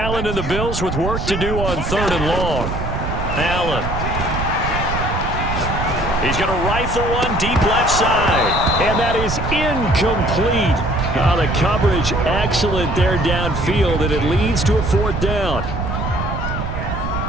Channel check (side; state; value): right; noise; rumble, 4 dB below the sound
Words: and the Bills with work to do on 3rd and long. Allen. He's going to rifle one deep left side. And that is incomplete. The coverage excellent there downfield, and it leads to a 4th down.